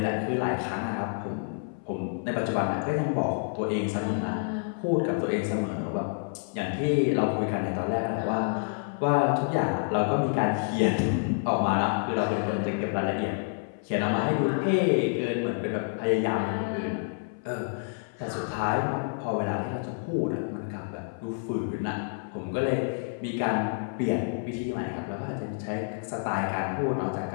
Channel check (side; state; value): right; silent; 59 dB below the other